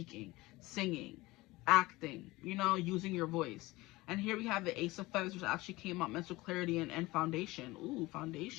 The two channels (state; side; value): quieter; right; 20.4 dB